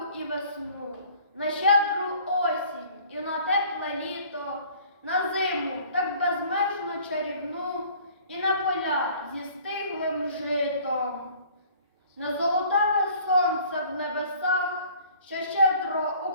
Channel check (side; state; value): both; inverted; correlation -0.52